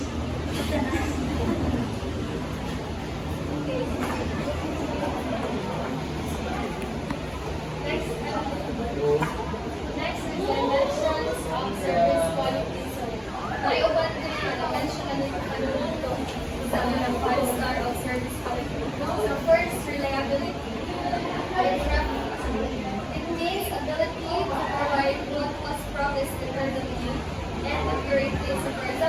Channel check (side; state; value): both; identical; correlation 1.00